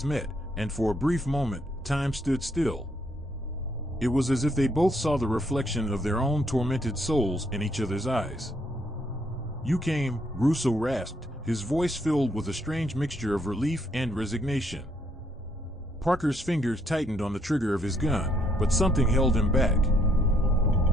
met, and for a brief moment, time stood still. It was as if they both saw the reflection of their own tormented souls in each other's eyes. "You came," Russo rasped, his voice filled with a strange mixture of relief and resignation. Parker's fingers tightened on the trigger of his gun, but something held him back.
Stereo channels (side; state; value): both; normal; correlation 0.71